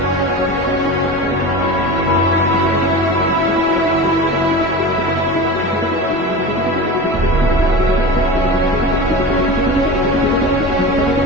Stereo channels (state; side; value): normal; both; correlation 0.30